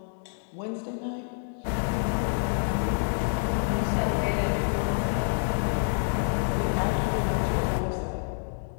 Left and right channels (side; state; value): right; silent; digital silence